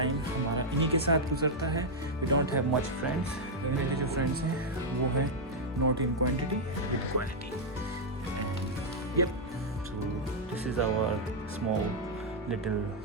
हमारा इन्हीं के साथ गुजरता है। We don't have much friends. मेरे जो फ्रेंड्स हैं वो हैं not in quantity with quality. Yup, so this is our small little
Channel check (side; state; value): both; normal; correlation -0.03